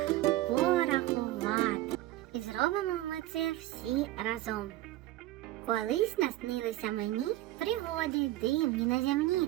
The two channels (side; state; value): left; quieter; 15.9 dB